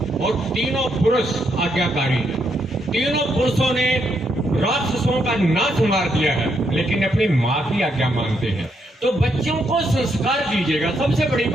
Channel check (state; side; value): normal; both; correlation 0.77